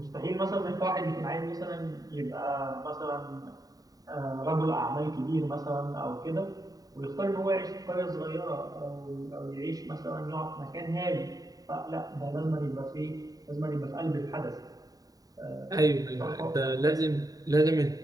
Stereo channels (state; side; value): late; left; 0.18 ms